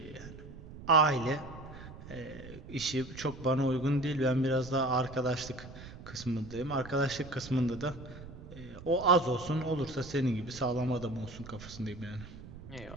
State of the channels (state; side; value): noise; right; rumble, 14 dB below the sound